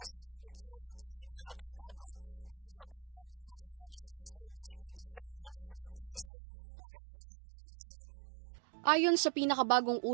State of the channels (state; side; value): drops out; left; at 6.2 s